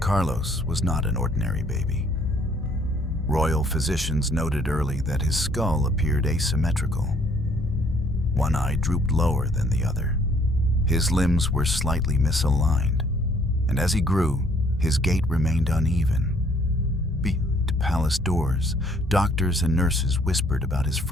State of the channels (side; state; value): both; normal; correlation 0.62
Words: was not an ordinary baby. Royal physicians noted early that his skull appeared asymmetrical. One eye drooped lower than the other. His limbs were slightly misaligned, and as he grew, his gait remained uneven. Behind palace doors, doctors and nurses whispered about his